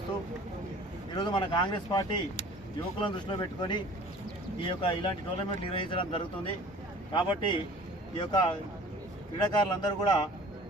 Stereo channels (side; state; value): both; normal; correlation 0.46